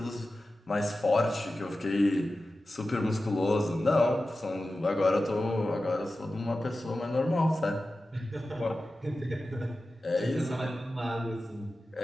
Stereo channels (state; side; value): normal; both; correlation 0.94